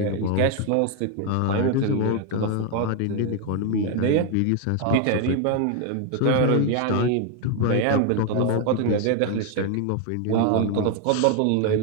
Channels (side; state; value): both; different; correlation 0.01